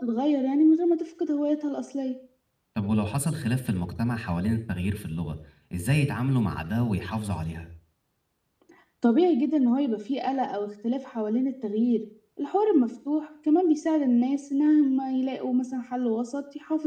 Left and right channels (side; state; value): both; identical; correlation 1.00